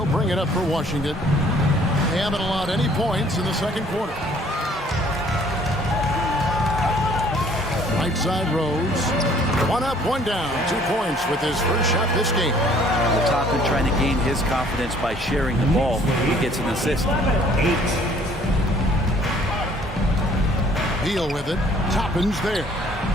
bring it up for Washington. They haven't allowed any points in the second quarter. Right side Rose. 1 up, 1 down. 2 points with his first shot this game. Toppin trying to gain his confidence by sharing the ball. He gets an assist. Beal with it. Toppin's there.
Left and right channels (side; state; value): both; normal; correlation 0.58